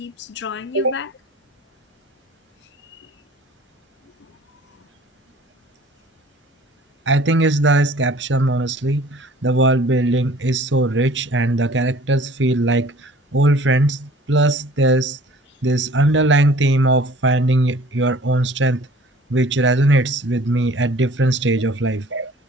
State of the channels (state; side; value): normal; both; correlation 0.50